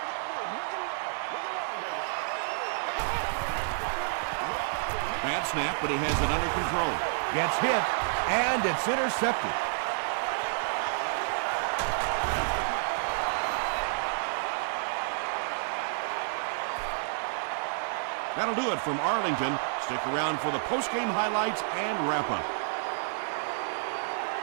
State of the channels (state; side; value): silent; left; digital silence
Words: Bad snap, but he has it under control. Gets hit, and it's intercepted. That'll do it from Arlington. Stick around for the postgame highlights and wrap-up.